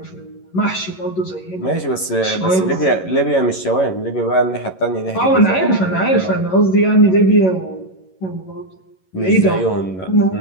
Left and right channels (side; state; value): right; late; 11 ms